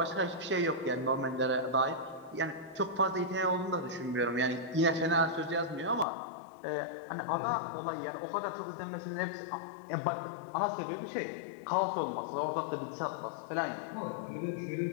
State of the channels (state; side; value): drops out; right; at 6.1 s